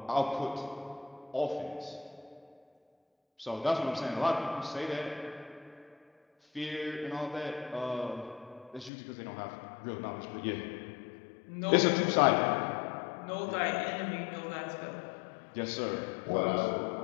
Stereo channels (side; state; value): right; drops out; at 8.9 s